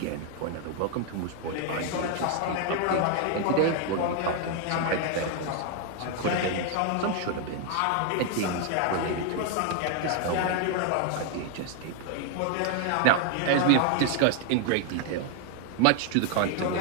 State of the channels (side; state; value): both; different; correlation 0.00